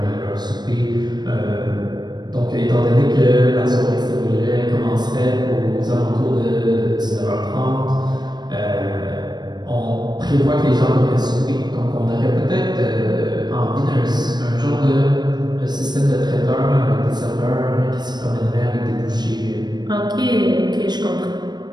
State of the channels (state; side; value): late; left; 0.20 ms